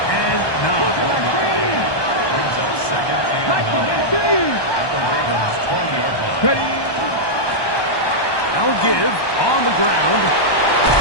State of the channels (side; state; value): right; late; 1.2 ms